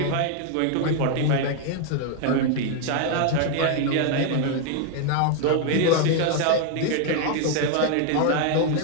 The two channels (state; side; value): different; both; correlation 0.00